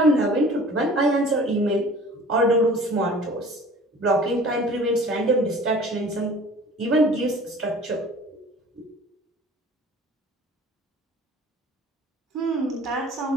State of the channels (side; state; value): both; normal; correlation 0.46